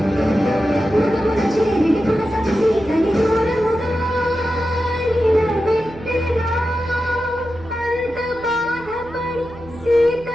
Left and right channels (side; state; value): right; noise; hum, 19 dB below the sound